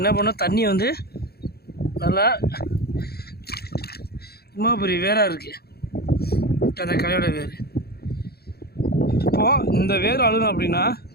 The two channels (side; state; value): right; late; 0.46 ms